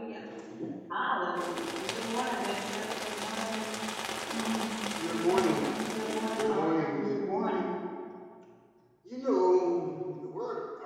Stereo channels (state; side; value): identical; both; correlation 1.00